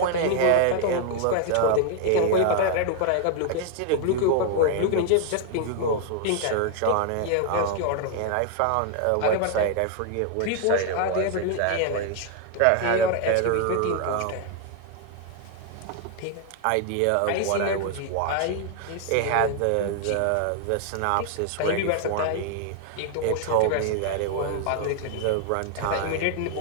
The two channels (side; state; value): both; different; correlation 0.00